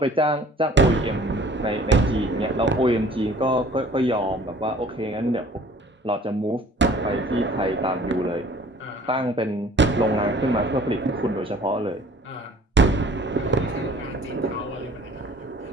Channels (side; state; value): both; normal; correlation 0.52